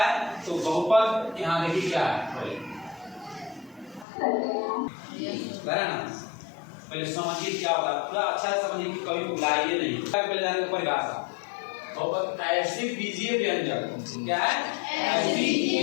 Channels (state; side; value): drops out; right; at 4.0 s